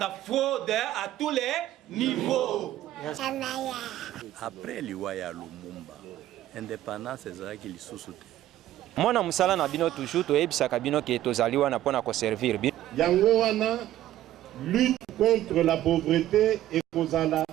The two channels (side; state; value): left; quieter; 13.5 dB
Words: fraude à tous les niveaux. Après l'Iwaya Lumumba, indépendance c'est qui sous-soute. Moi na musala na bino toujours to ebisa kabino ke tozali wana pona ko servir bi. Yango wana lutte contre la pauvreté et kozala